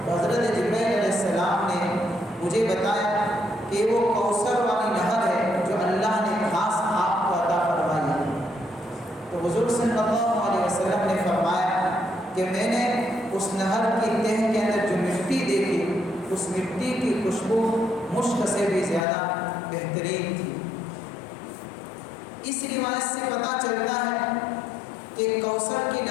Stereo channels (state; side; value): drops out; right; at 19.1 s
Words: حضرت جبرائیل علیہ السلام نے مجھے بتایا کہ وہ کوثر والی نہر ہے جو اللہ نے خاص آپ کو عطا فرمائی ہے۔ تو حضور صلی اللہ علیہ وسلم نے فرمایا کہ میں نے اس نہر کی تہ کے اندر جو مٹی دیکھی، اس مٹی کی خوشبو مشک سے بھی زیادہ بہترین تھی۔ اس روایت سے پتہ چلتا ہے کہ کوثر کی